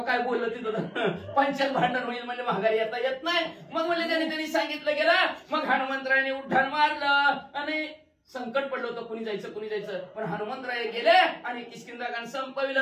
काय बोललं तिथं पंचायत भांडण होईल म्हणजे माघारी येत नाही. मग म्हणले त्यांनी सांगितलं गेलं. मग हनुमंतरायाने उड्डाण मारलं आणि संकट पडलं होतं कुणी जायचं पण हनुमंतराय गेले आणि किष्किंधा कांड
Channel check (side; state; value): both; identical; correlation 1.00